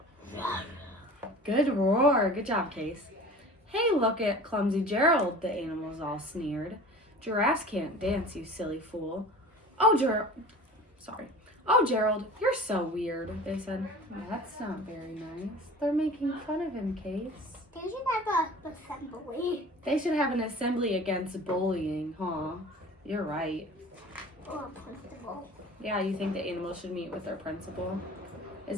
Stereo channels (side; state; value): both; normal; correlation 0.40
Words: Good roar. Good job, Case. Hey, look at clumsy Gerald, the animals all sneered. Giraffes can't dance, you silly fool. Oh, Gerald, you're so weird, they said. That's not very nice. They're making fun of him, Case. They should have an assembly. They should have an assembly against bullying, huh? You're right. Or a principal. Yeah, you think the animals should meet with their principal? Is